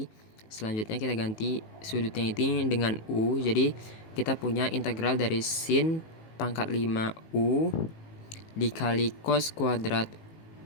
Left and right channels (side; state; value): right; late; 18 ms